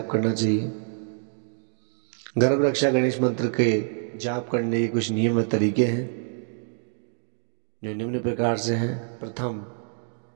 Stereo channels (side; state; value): left; silent; digital silence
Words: करना चाहिए। गर्भ रक्षा गणेश मंत्र के जाप करने के कुछ नियम व तरीके हैं जो निम्न प्रकार से हैं। प्रथम,